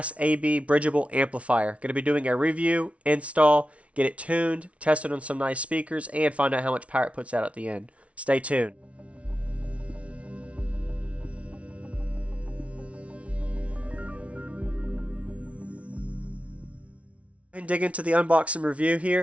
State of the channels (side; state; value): left; late; 0.063 ms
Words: AB bridgeable amplifier. Going to be doing a review, install, get it tuned, test it on some nice speakers, and find out how much power it puts out at the end. Stay tuned. And dig into the unboxing review